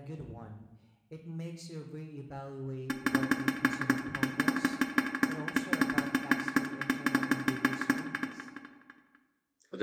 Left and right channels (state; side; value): identical; both; correlation 1.00